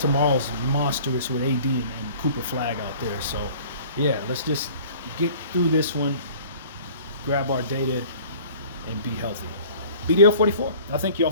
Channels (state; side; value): inverted; both; correlation -0.48